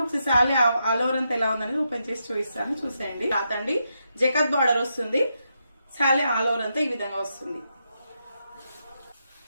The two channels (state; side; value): inverted; both; correlation -0.83